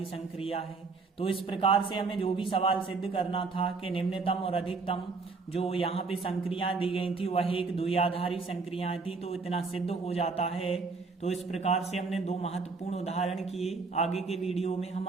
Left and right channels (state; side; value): quieter; left; 4.3 dB